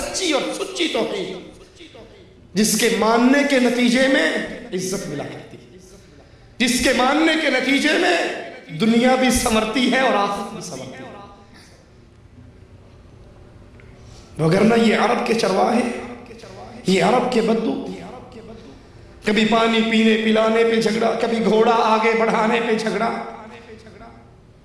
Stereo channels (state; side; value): identical; both; correlation 1.00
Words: اور سچی توحید جس کے ماننے کے نتیجے میں عزت ملا کرتی ہے، جس کے ماننے کے نتیجے میں دنیا بھی سنورتی ہے اور آخرت بھی سنورتی ہے۔ وگرنہ یہ عرب کے چرواہے، یہ عرب کے بدو، کبھی پانی پینے پلانے پہ جھگڑا، کبھی گھوڑا آگے بڑھانے پہ جھگڑا،